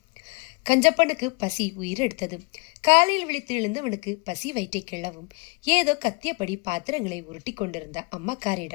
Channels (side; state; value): right; quieter; 30.5 dB